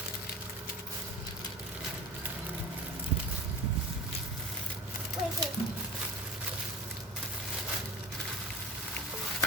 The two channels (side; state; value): both; normal; correlation 0.35